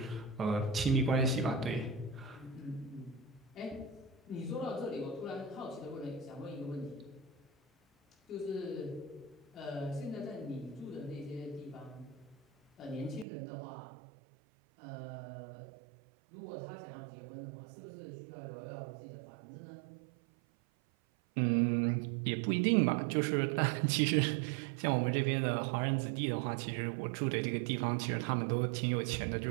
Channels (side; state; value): left; drops out; at 13.2 s